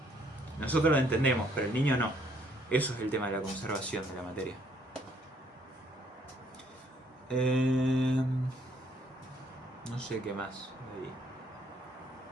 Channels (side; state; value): both; normal; correlation 0.66